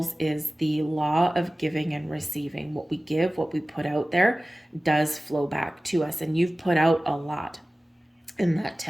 is the law of giving and receiving. What we give, what we put out there does flow back to us. And you've put out a lot in that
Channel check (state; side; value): normal; both; correlation 0.97